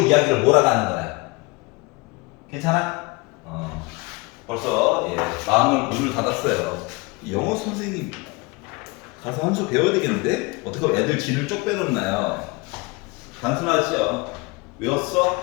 이야기를 몰아가는 거야. 괜찮아? 벌써 마음을 문을 닫았어요. 영어 선생님 가서 한 수 배워야 되겠는데? 어떻게 하면 애들 진을 쪽 빼놓나요? 단순하죠.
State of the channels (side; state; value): right; quieter; 26.1 dB